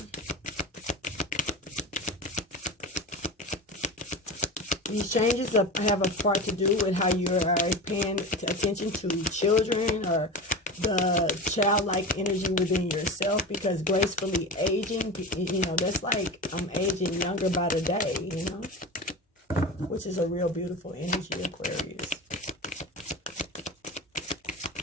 These changes have a part to do with how you are paying attention to children or the childlike energy within yourself, because gracefully aging, that's like I'm aging younger by the day, which is a real beautiful energy, Aquarius.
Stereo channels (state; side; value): normal; both; correlation 0.28